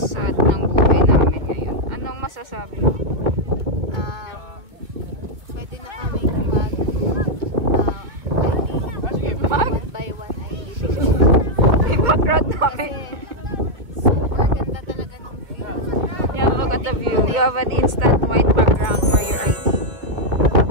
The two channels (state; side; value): late; left; 2.3 ms